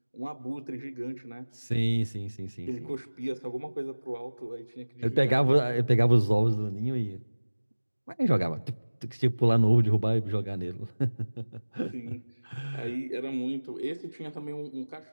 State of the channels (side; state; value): both; inverted; correlation -1.00